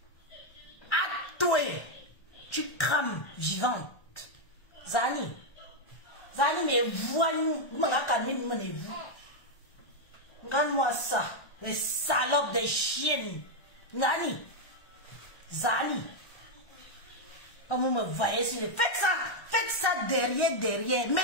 À toi, tu crames vivante. Zani, mais voyons, vous. Regarde-moi ça, les salopes des chiennes. Zani, comme vous me voyez, faites ça derrière.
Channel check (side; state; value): right; late; 1.3 ms